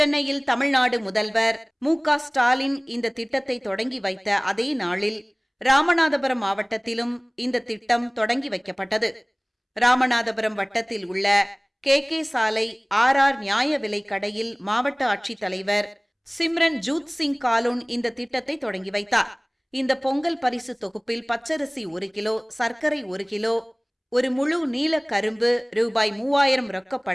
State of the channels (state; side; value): identical; both; correlation 1.00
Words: தமிழ்நாடு முதல்வர் மு.க.ஸ்டாலின் இந்த திட்டத்தை தொடங்கி வைத்த அதே நாளில் ராமநாதபுரம் மாவட்டத்திலும் இந்த திட்டம் தொடங்கி வைக்கப்பட்டது. ராமநாதபுரம் வட்டத்தில் உள்ள கே சாலை ஆர் நியாய விலை கடையில் மாவட்ட ஆட்சித்தலைவர் சிம்ரன் ஜூத் சிங் காலூன் இந்த திட்டத்தை தொடங்கி வைத்தார். இந்த பொங்கல் பரிசு தொகுப்பில் பச்சரிசி 1 கிலோ, சர்க்கரை 1 கிலோ, ஒரு முழு நீல கரும்பு, ரூபாய் 3000